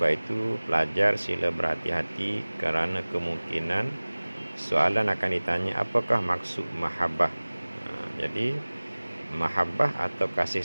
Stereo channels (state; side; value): inverted; both; correlation -1.00